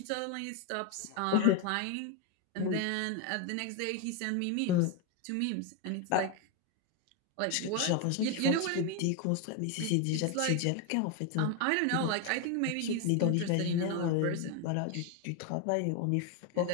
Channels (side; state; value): both; different; correlation 0.02